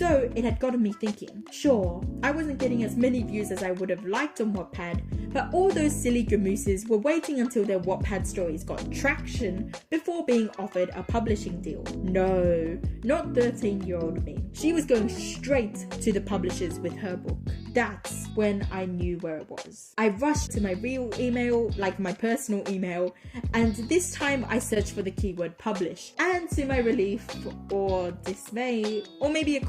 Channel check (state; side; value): identical; both; correlation 1.00